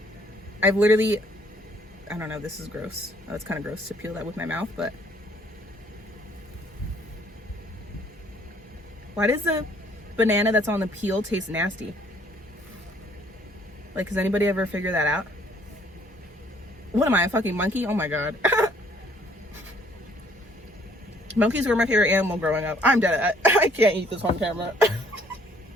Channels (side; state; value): both; normal; correlation 0.62